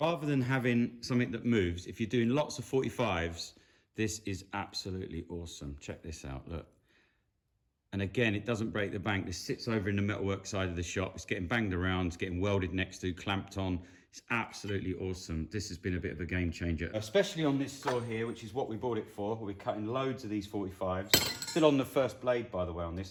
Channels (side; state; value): both; identical; correlation 1.00